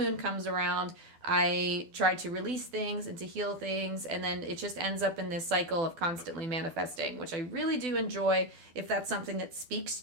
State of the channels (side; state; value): left; late; 12 ms